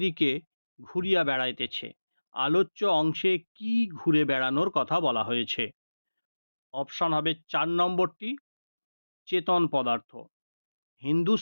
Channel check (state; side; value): inverted; both; correlation -1.00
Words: ঘুরিয়া বেড়াইতেছে। আলোচ্য অংশে কি ঘুরে বেড়ানোর কথা বলা হয়েছে? অপশান হবে ৪ নম্বরটি চেতন পদার্থ।